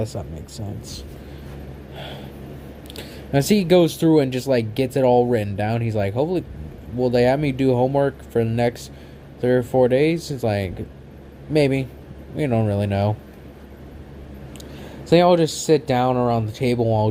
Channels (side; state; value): both; identical; correlation 1.00